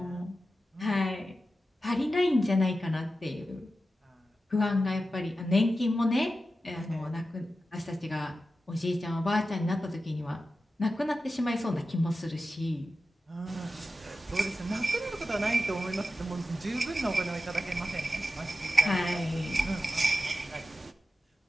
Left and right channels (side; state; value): both; normal; correlation 0.92